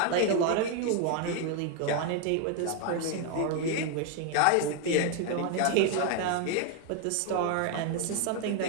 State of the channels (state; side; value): different; both; correlation 0.01